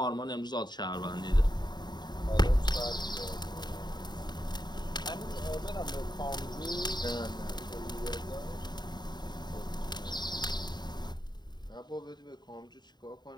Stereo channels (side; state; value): right; late; 0.21 ms